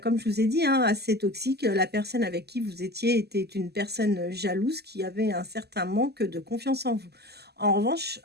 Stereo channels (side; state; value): left; late; 0.47 ms